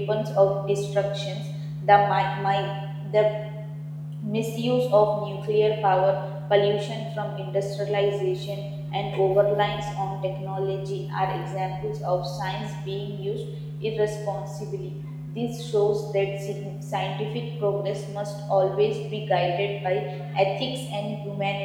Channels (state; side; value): identical; both; correlation 1.00